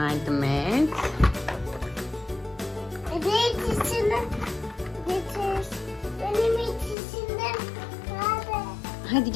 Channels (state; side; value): drops out; right; at 7.0 s